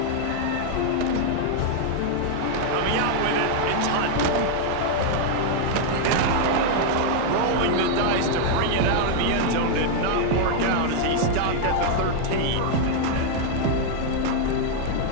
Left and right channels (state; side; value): different; both; correlation 0.00